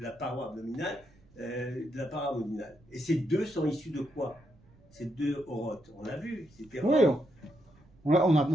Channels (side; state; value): right; noise; rumble, 28 dB below the sound